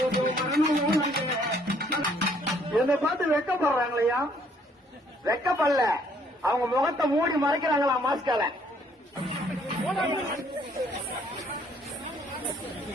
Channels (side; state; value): both; normal; correlation 0.64